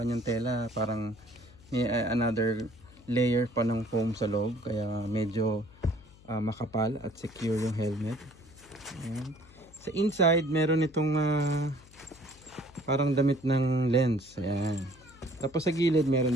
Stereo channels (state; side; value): noise; left; hum, 24 dB below the sound